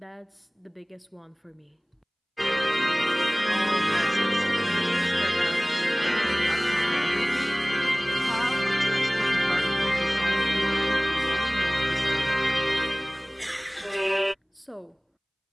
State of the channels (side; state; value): both; identical; correlation 1.00